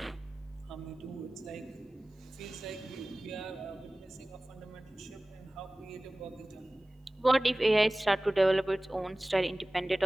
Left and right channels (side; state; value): both; normal; correlation 0.98